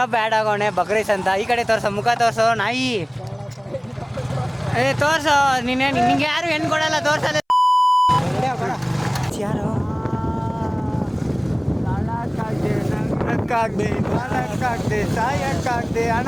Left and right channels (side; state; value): both; identical; correlation 1.00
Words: ಆ್ಯಡ್ ಆಗೋಣೆ ಬಕ್ರೈಸ್ ಅಂತ. ಈ ಕಡೆ ತೋರ್ಸೋ, ಮುಖ ತೋರ್ಸೋ ನಾಯಿ. ತೋರ್ಸೋ ನಿನ್ನೆ. ನಿಂಗೆ ಯಾರು ಹೆಣ್ಣು ಕೊಡಲ್ಲ, ತೋರ್ಸಲ್ಲ. ಯಾರು ನಾಳಕ್ಕಾಗ್ದೆ ಸಾಯಕ್ಕಾಗ್ದೆ